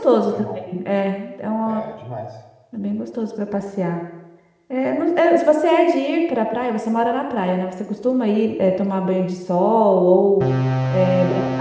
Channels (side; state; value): both; identical; correlation 1.00